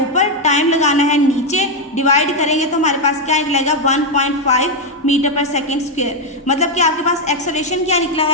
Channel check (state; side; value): normal; both; correlation 0.03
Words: ऊपर, टाइम लगाना है नीचे, डिवाइड करेंगे तो हमारे पास क्या निकलेगा 1.5 मीटर पर सेकेंड स्क्वायर, मतलब कि आपके पास एक्सेलरेशन क्या निकला